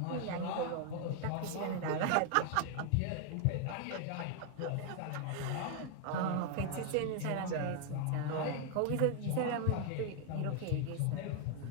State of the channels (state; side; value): different; both; correlation 0.00